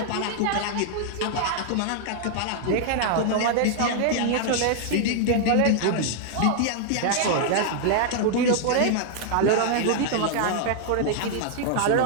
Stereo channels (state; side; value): different; both; correlation -0.01